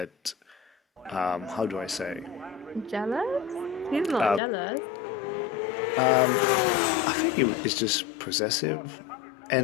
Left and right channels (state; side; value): drops out; right; at 4.4 s